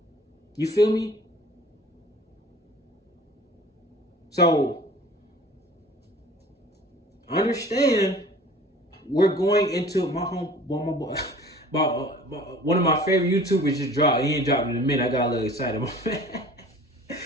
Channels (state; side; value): normal; both; correlation 0.46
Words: You feel me? So, understand, we're going into my home. One of my favorite YouTubers just dropped. He ain't dropped in a minute. I got a little excited.